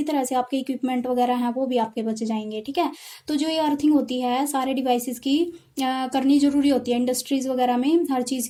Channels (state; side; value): identical; both; correlation 1.00